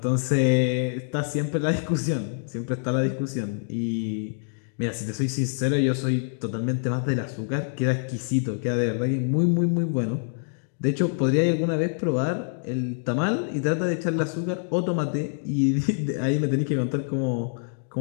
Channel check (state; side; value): silent; right; digital silence